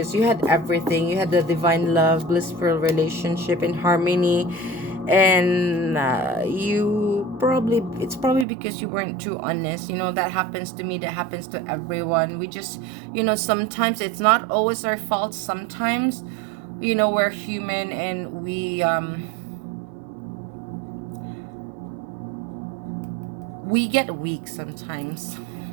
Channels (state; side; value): drops out; left; at 8.5 s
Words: you had everything. You had the divine love, blissful relationship, and harmony, and it's probably because you weren't too honest. That happens to me. That happens to everyone. We just, sometimes it's not always our fault. Sometimes, we're human, and we get weak sometimes.